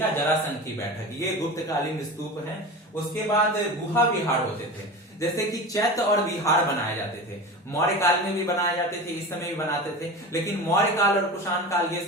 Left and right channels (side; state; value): both; normal; correlation 0.30